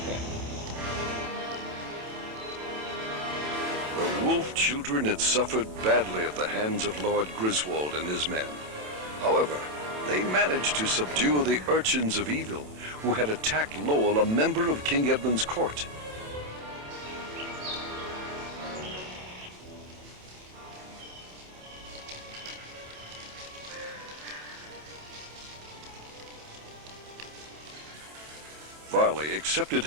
The wolf children had suffered badly at the hands of Lord Griswold and his men. However, they managed to subdue the urchins of evil who had attacked Lowell, a member of King Edmund's court. Varley accepted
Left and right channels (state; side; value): late; left; 27 ms